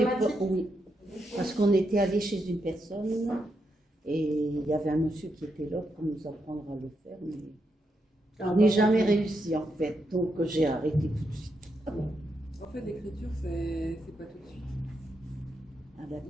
automatique? pas, oui. Parce qu'on était allé chez une personne et il y avait un monsieur qui était là pour nous apprendre à le faire, mais on n'est jamais réussi en fait, donc j'ai arrêté tout de suite. En fait, l'écriture, c'est pas tout de suite. Ah,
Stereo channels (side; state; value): both; normal; correlation 0.82